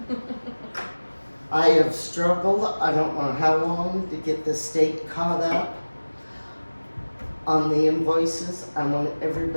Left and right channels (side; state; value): both; inverted; correlation -1.00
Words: I have struggled, I don't know how long, to get the state caught up on the invoices. I want